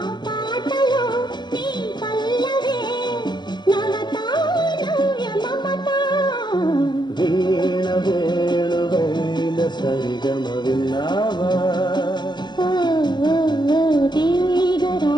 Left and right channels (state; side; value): late; right; 0.21 ms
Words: పాటలో నీ పల్లవే నవత నవ్య మమత వీణ వేణువైన సరిగమ విన్నావా